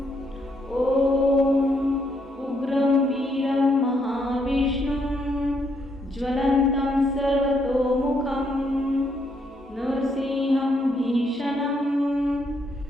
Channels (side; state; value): both; normal; correlation 0.74